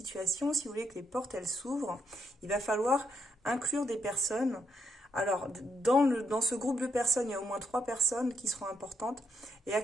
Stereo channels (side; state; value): both; normal; correlation 0.78